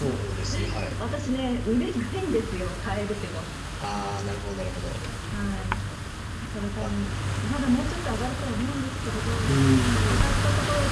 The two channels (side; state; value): both; identical; correlation 1.00